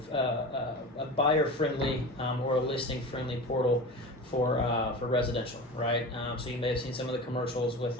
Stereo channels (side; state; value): both; normal; correlation 0.31